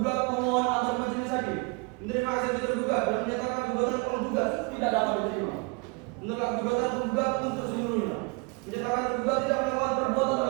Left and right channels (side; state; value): left; quieter; 30.2 dB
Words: memohon agar majelis hakim menerima eksepsi tergugat dan menyatakan gugatan penggugat tidak dapat diterima. Menolak gugatan penggugat untuk seluruhnya. Menyatakan tergugat tidak melakukan perbuatan